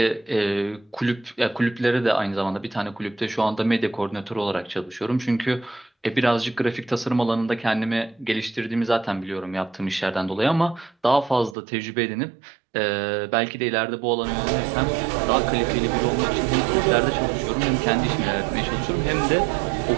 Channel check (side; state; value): left; drops out; at 11.6 s